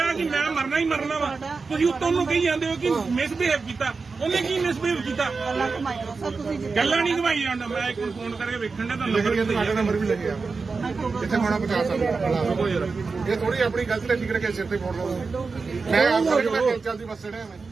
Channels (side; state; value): left; quieter; 4.5 dB